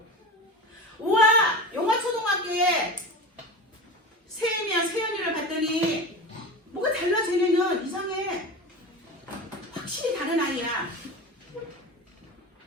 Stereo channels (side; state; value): both; normal; correlation 0.27